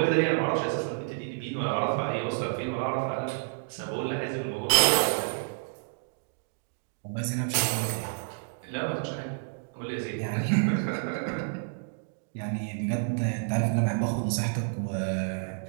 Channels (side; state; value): left; silent; digital silence